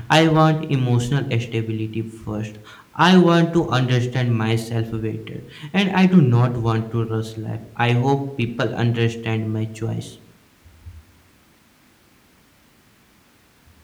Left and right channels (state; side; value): identical; both; correlation 1.00